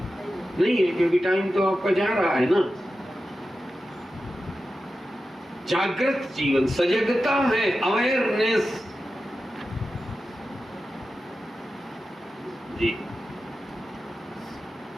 नहीं है, क्योंकि टाइम तो आपका जा रहा है ना। जागृत जीवन, सजगता है, अवेयरनेस जी।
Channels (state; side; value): normal; both; correlation 0.92